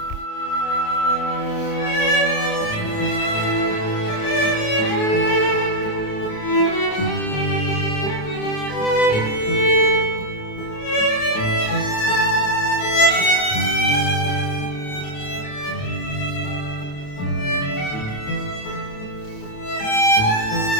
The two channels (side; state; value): right; late; 28 ms